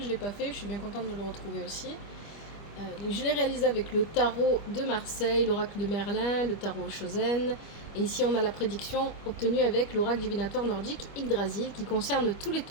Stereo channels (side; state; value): right; late; 25 ms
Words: ne l'ai pas fait. Je suis bien contente de le retrouver aussi. Je l'ai réalisé avec le tarot de Marseille, l'oracle de Merlin, le tarot Chosen. Et ici, on a la prédiction obtenue avec l'oracle divinatoire nordique Yggdrasil qui concerne tous les